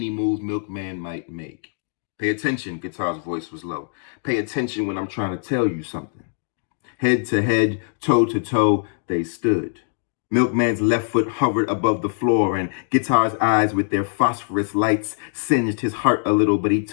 move Milkman might make. Pay attention, Guitar's voice was low. Pay attention when I'm trying to tell you something. Head to head, toe to toe, they stood. Milkman's left foot hovered above the floor, and Guitar's eyes with their phosphorus lights singed his heart a little, but he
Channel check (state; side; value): silent; right; digital silence